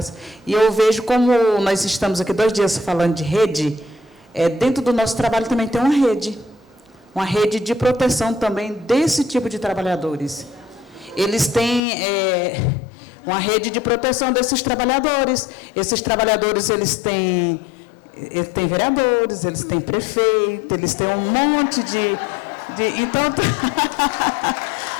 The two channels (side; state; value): right; drops out; at 11.8 s